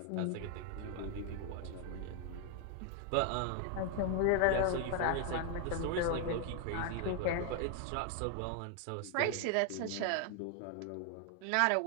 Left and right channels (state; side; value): different; both; correlation 0.00